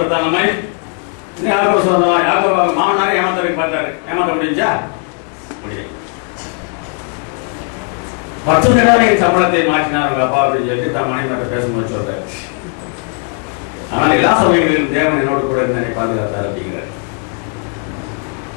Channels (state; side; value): quieter; right; 38.3 dB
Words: நம்மை யாக்கோபு சுதந்திரம் யாக்கோபு மாமனாரை ஏமாத்தவரை பார்த்தாரு. ஏமாத்த முடிஞ்சா முடியும். 10 தடவை என் சம்பளத்தை மாற்றினார் உங்க அப்பா அப்படின்னு சொல்லிட்டு தான் மனைவி பேசும்போது சொல்றாரு. ஆனால் எல்லா சமயங்களிலும் தேவன் என்னோடு கூட என்னை பாதுகாத்தார் அப்படிங்கிறார்.